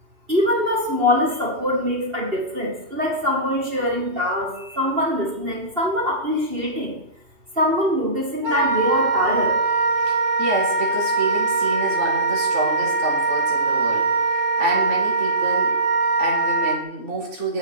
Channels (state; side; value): late; left; 2.7 ms